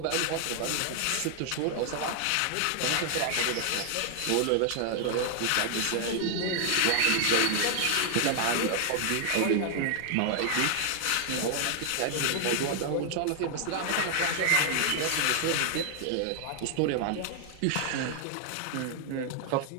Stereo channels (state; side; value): different; both; correlation 0.00